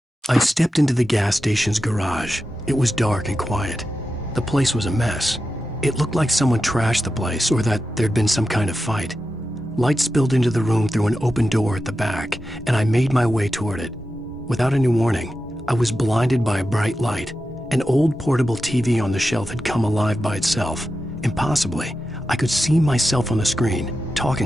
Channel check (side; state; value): both; normal; correlation 0.91